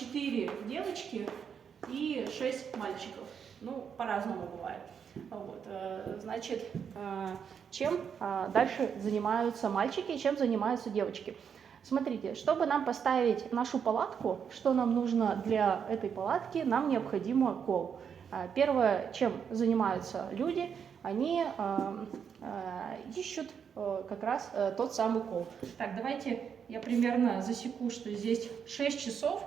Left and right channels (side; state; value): left; quieter; 7.3 dB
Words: девочки и 6 мальчиков. Ну, по-разному бывает. Вот, значит, чем дальше занимаются мальчики и чем занимаются девочки. Смотрите, чтобы нам поставить нашу палатку, что нам нужно для этой палатки, нам необходимо кол. Первое, чем занимаются люди, они ищут как раз тот самый кол. Так, давайте я примерно засеку, что здесь 6 часов,